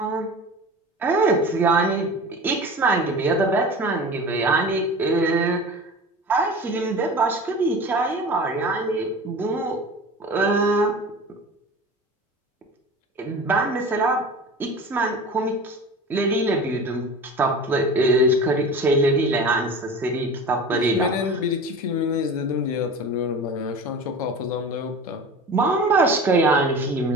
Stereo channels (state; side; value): normal; both; correlation 0.36